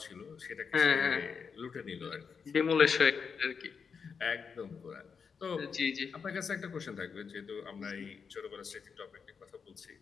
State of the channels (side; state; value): right; quieter; 6.0 dB